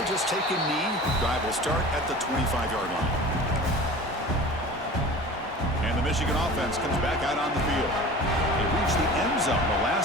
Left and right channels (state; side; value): normal; both; correlation 0.39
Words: just take a knee. Drive will start at the 25-yard line. And the Michigan offense comes back out on the field. They reached the end zone the